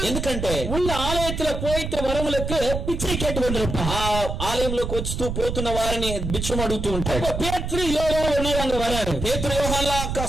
ఎందుకంటే ఉన్న ఆలయத்துல పోయితే వరములకు పిచ్చை கேட்டு வந்திருப்பான். ఆ ఆలయంలోకి వస్తూ పోతున్న వారిని బిచ్చం అడుగుతూ ఉంటాడు. పేతురు యోహాను ఉన్నారు అక్కడ వరారు. పేతురు యోహాన్ల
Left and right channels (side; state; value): right; noise; rumble, 4 dB below the sound